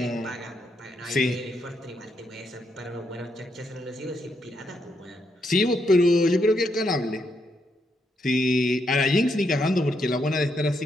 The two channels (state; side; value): normal; both; correlation 0.78